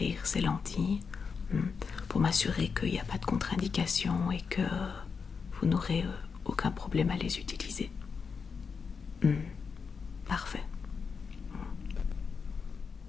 ces lentilles pour m'assurer qu'il n'y a pas de contre-indication et que vous n'aurez aucun problème à les utiliser. Parfait.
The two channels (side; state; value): right; quieter; 5.6 dB